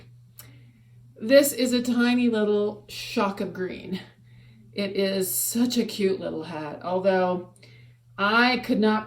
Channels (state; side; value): identical; both; correlation 1.00